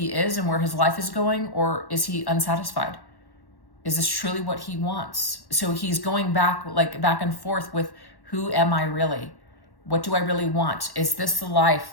is and where his life is going, or is he unsatisfied? Is this truly what he wants? So he's going back and forth with, who am I really? What do I really want? Is this the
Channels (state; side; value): late; right; 1.1 ms